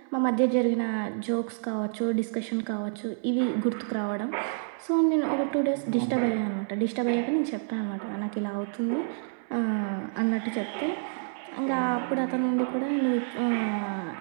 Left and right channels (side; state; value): left; silent; 59 dB below the other